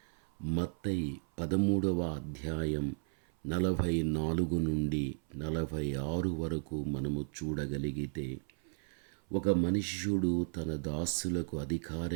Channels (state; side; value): silent; left; 55 dB below the other